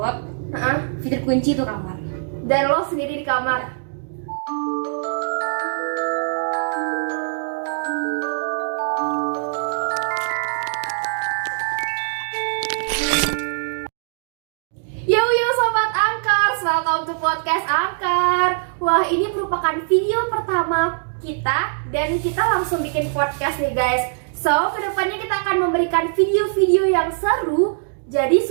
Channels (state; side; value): silent; left; digital silence